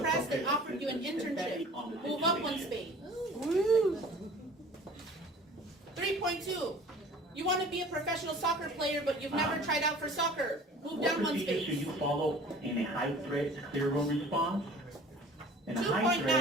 and appropriate offered you an assistance depending internship. on the Move up 1 situation. space. 3.2. You want to be a professional soccer player, but you've never tried out for soccer. Move What down 1 procedures should space. you follow in a high threat clear room response? In a high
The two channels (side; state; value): both; normal; correlation 0.46